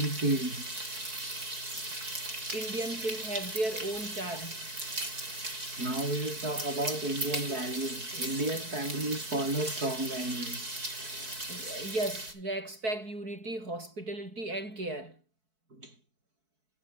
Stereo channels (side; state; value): left; late; 4.6 ms